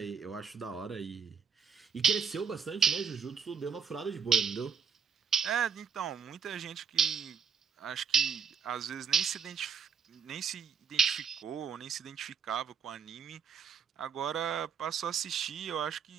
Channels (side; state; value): left; quieter; 6.9 dB